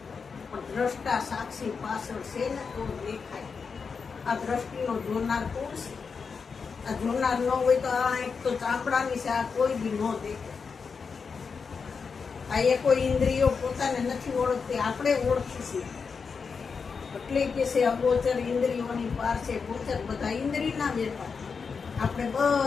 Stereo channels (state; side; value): quieter; right; 5.4 dB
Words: પણ દ્રષ્ટા સાક્ષી પાછળ છે ને તો દેખાય. આ દ્રષ્ટિનો જોનાર કોણ છે? આ જોનાર ન હોય તો આ એક તો ચામડાની છે આ કોઈ બી ન દેખાય. આ એ કોઈ ઇન્દ્રિયો પોતાને નથી ઓળખતી આપણે ઓળખી છીએ. એટલે કે છે અગોચર ઇન્દ્રિયોની પાર છે ગોચર. બધા ઇન્દ્રિયના વેપાર આપણે